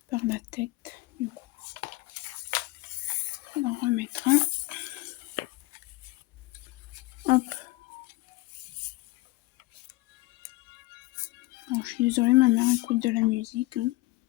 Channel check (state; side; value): quieter; right; 20.6 dB